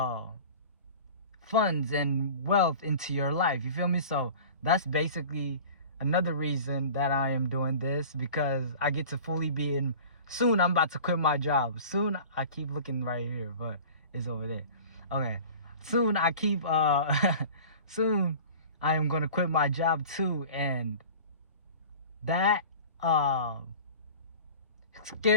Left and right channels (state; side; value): inverted; both; correlation -0.40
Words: funds and wealth into your life, you feel me? So that's basically another reason that I am doing this, because I get to fully be in. Soon I'm about to quit my job. Soon, I keep looking right here, but it's over there. Okay. Soon soon I am gonna quit my job too, and that